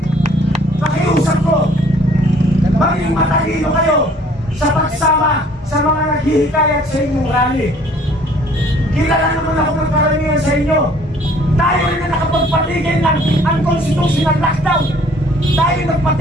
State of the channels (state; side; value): normal; both; correlation 0.57